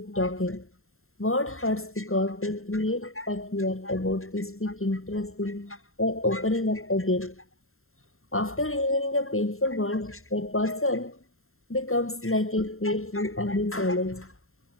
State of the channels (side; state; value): right; late; 0.61 ms